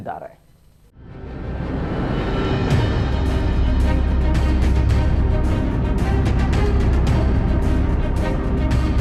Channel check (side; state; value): both; identical; correlation 1.00